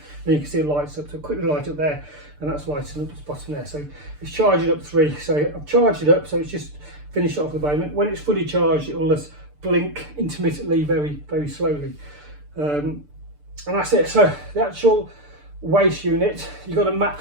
Then you can see it lights up. So quickly light up there, and that's lighting up the bottom there. So it's charging up 3. So I've charged it up, so it's just finished off at the moment. When it's fully charged, it will just blink intermittently, very, very slowly. And that's it. So the actual waste unit, you've got a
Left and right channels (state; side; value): late; left; 6.8 ms